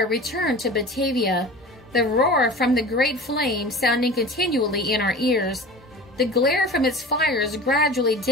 returned to Batavia, the roar from the great flame sounding continually in our ears, the glare from its fires gradually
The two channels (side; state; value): both; normal; correlation 0.37